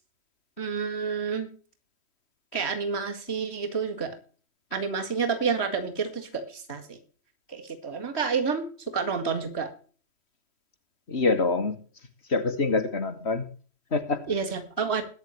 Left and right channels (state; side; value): late; right; 3.1 ms